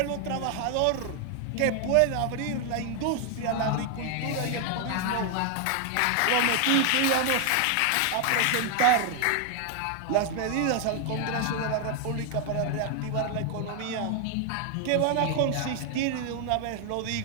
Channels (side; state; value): both; different; correlation 0.00